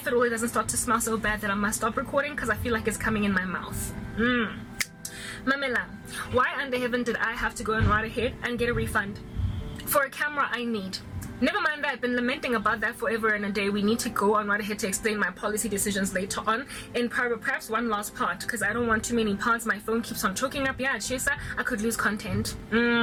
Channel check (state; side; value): identical; both; correlation 1.00